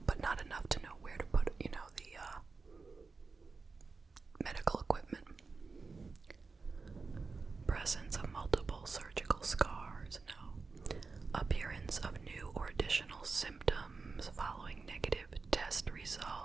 but not enough to know where to put, the medical equipment. Presence of multiple surgical scars, no. Appearance of new or additional symptoms following negative test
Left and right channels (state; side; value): quieter; left; 4.4 dB